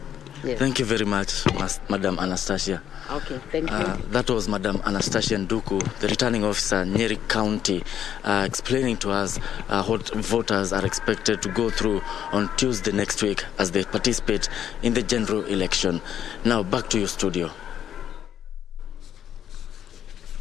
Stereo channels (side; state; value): right; quieter; 9.8 dB